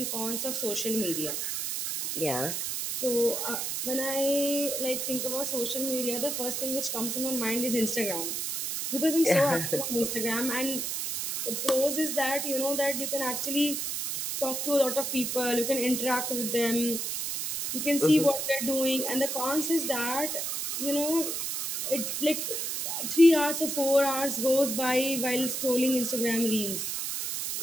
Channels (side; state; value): right; noise; hiss, 2 dB below the sound